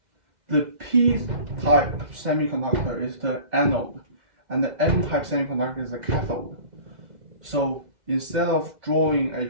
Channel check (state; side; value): late; left; 2.0 ms